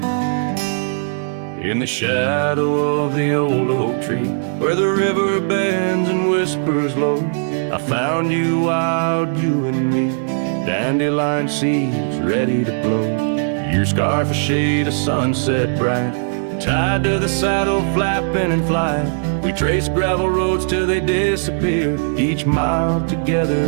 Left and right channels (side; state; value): left; silent; digital silence